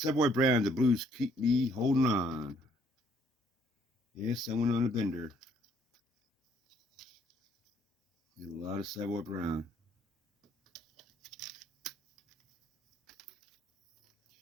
Brown, The Blues Keep Me Holding On. Yes, I went on a bender. Did a lot of Savoy Brown.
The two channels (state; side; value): normal; both; correlation 0.66